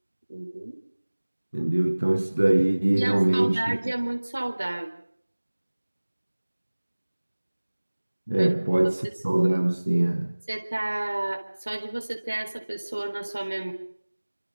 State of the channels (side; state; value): both; inverted; correlation -1.00